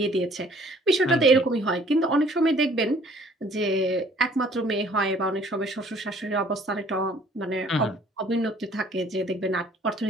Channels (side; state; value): both; normal; correlation 0.57